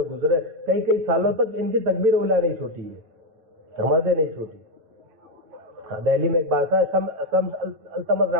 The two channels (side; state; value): left; late; 9.0 ms